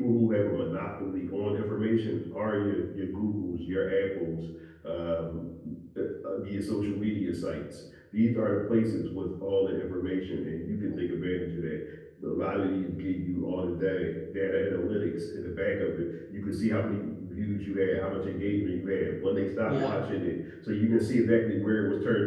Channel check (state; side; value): identical; both; correlation 1.00